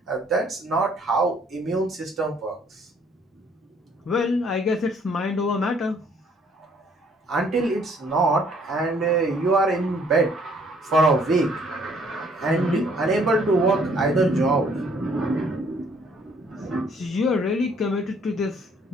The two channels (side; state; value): both; normal; correlation 0.62